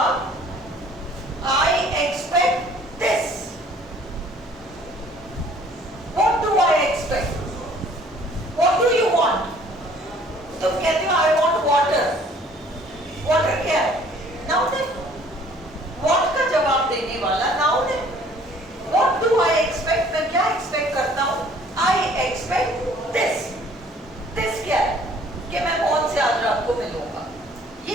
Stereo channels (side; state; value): both; normal; correlation 0.56